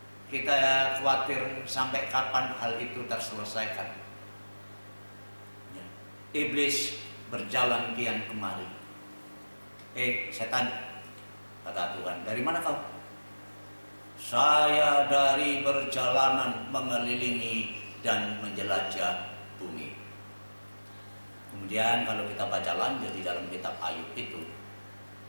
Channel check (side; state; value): both; inverted; correlation -1.00